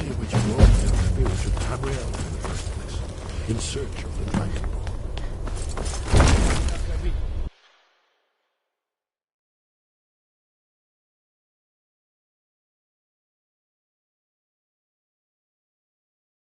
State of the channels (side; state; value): both; identical; correlation 1.00